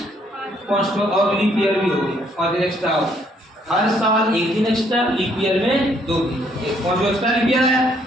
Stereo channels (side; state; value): both; normal; correlation 0.67